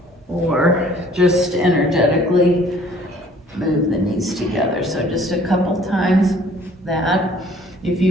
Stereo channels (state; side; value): normal; both; correlation 0.56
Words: or just energetically move the knees together. So just a couple times that. If